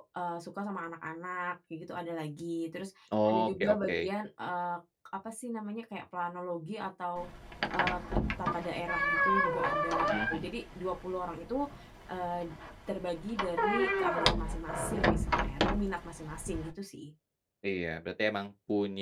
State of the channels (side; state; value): both; identical; correlation 1.00